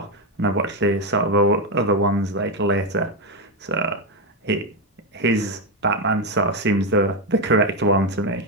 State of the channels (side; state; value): both; normal; correlation 0.07